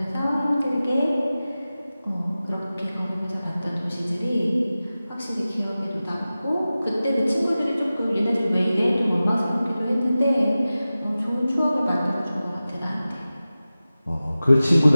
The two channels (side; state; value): both; inverted; correlation -0.96